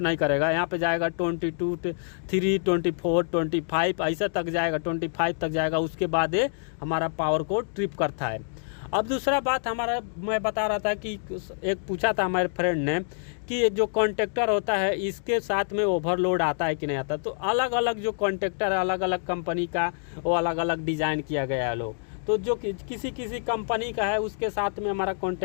करेगा, यहाँ पे जाएगा 22, 3, 24, 25 ऐसा तक जाएगा, 25 तक जाएगा। उसके बाद ये हमारा पावर को ट्रिप करता है। अब दूसरा बात हमारा, मैं बता रहा था कि एक पूछा था हमारे फ्रेंड ने कि जो कॉन्टेक्टर होता है इसके साथ में ओवरलोड आता है कि नहीं आता। तो अलग अलग जो कॉन्टेक्टर है, अलग अलग कंपनी का, वो अलग अलग डिज़ाइन किया गया है लोग। तो जो किसी कंपनी का है उसके साथ में हमारा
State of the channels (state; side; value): silent; right; digital silence